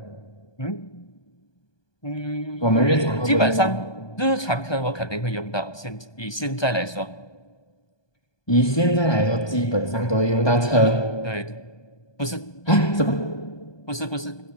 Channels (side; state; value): right; late; 1.2 ms